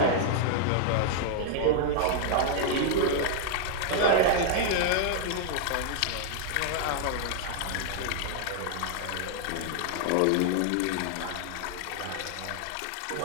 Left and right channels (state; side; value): different; both; correlation -0.01